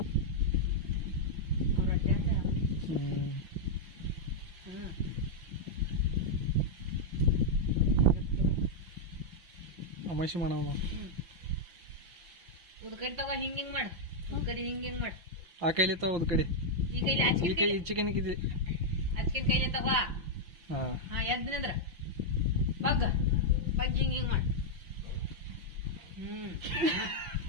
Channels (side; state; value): left; late; 5.9 ms